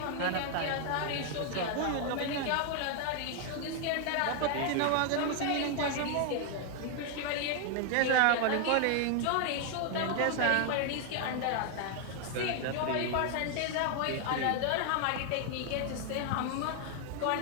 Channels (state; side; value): different; both; correlation 0.00